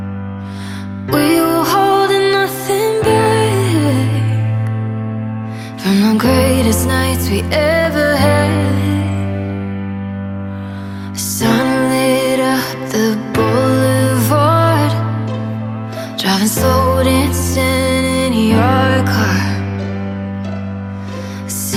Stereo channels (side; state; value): both; identical; correlation 1.00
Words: We were holding nothing back from the greatest nights we ever had. Sun lit up the boulevard, driving slow, dancing in your car,